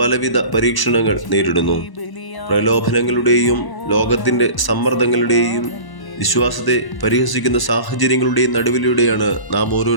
പരീക്ഷണങ്ങൾ നേരിടുന്നു. പ്രലോഭനങ്ങളുടെയും ലോകത്തിന്റെ സമ്മർദ്ദങ്ങളുടെയും വിശ്വാസത്തെ പരിഹസിക്കുന്ന സാഹചര്യങ്ങളുടെയും നടുവിലൂടെയാണ് നാം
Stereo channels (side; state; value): right; late; 1.0 ms